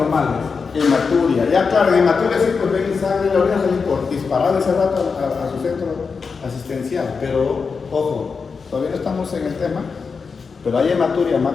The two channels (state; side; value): quieter; right; 5.2 dB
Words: hematuria. Ya claro, en hematuria sí, pues ven sangre, la orina salir por disparar ese rato a su centro asistencial. Pero, ojo, todavía no estamos en el tema. Pero hay hematuria